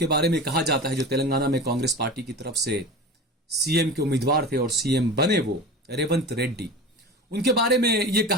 बारे में कहा जाता है, जो तेलंगाना में कांग्रेस पार्टी की तरफ से सीएम के उम्मीदवार थे और सीएम बने वो रेवंत रेड्डी, उनके बारे में यह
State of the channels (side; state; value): both; normal; correlation 0.32